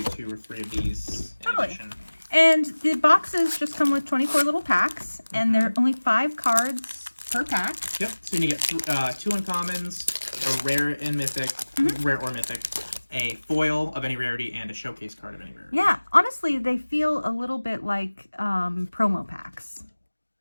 do 2 or 3 of these in addition. And the boxes just come with 24 little packs, and there are only 5 cards per pack. Yep. So you get 2 uncommons, a rare and mythic, rare or mythic, a foil of any rarity, and a showcase card of any rarity. Yeah, honestly, they feel a little bit like promo packs.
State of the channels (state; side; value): inverted; both; correlation -1.00